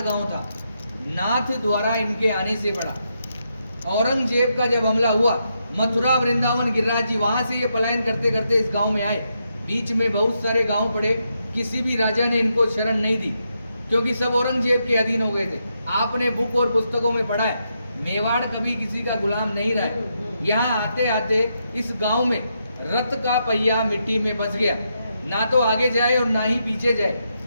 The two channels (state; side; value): inverted; both; correlation -0.82